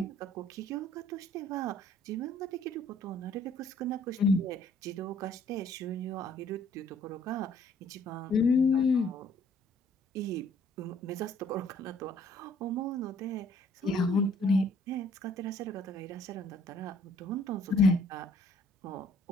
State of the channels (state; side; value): normal; both; correlation 0.60